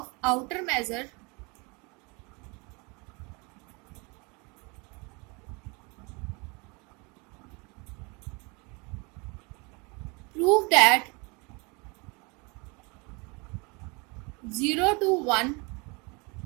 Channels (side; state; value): left; quieter; 29.5 dB